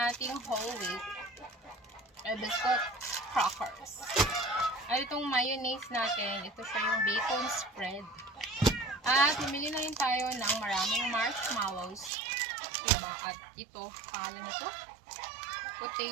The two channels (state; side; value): drops out; left; at 12.1 s